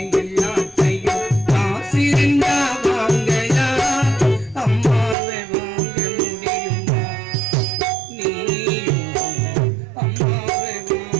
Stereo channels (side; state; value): left; drops out; at 5.2 s